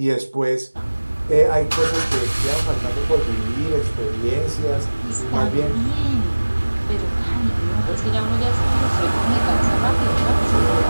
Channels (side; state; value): both; inverted; correlation -1.00